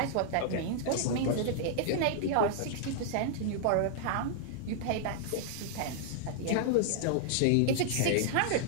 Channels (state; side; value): different; both; correlation -0.01